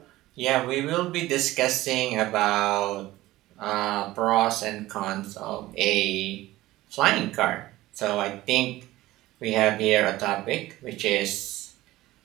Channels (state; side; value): quieter; left; 17.0 dB